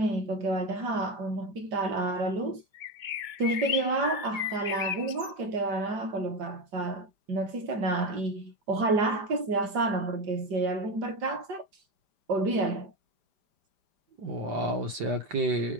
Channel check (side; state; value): left; late; 5.0 ms